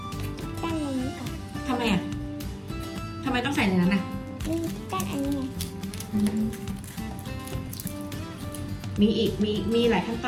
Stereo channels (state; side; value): identical; both; correlation 1.00